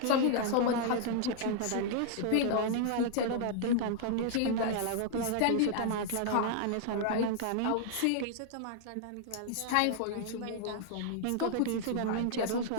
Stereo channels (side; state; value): both; different; correlation -0.01